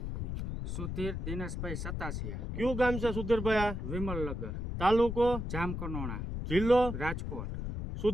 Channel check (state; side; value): noise; left; rumble, 4 dB below the sound